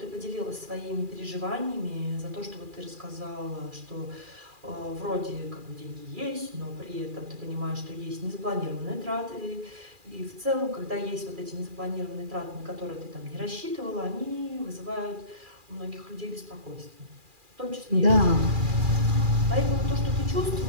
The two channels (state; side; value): late; left; 2.4 ms